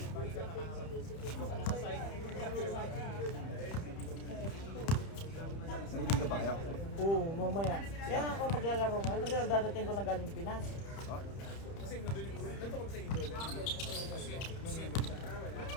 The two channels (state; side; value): late; right; 30 ms